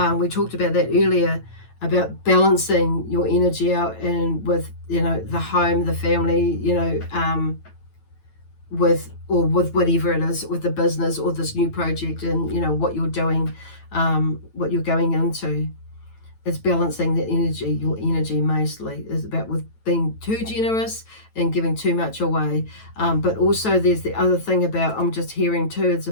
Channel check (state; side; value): late; right; 9.1 ms